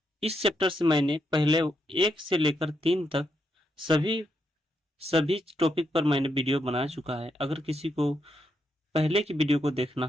चैप्टर से मैंने पहले 1 से लेकर 3 तक सभी टॉपिक पर मैंने वीडियो बना चुका है। अगर किसी को पहले की वीडियो को देखना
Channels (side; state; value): both; normal; correlation 0.80